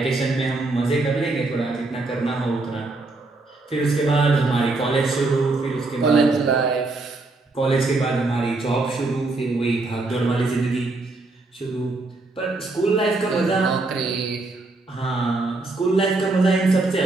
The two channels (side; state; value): left; quieter; 3.3 dB